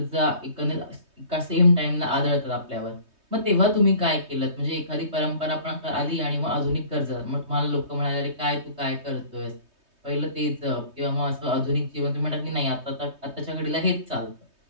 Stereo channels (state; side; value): late; left; 3.2 ms